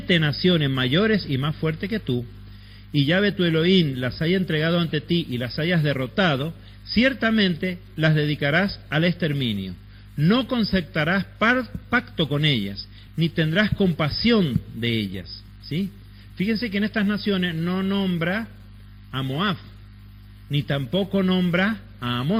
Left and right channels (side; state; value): both; identical; correlation 1.00